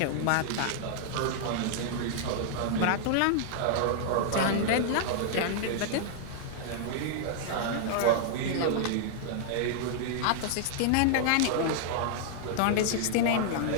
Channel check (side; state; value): both; different; correlation -0.01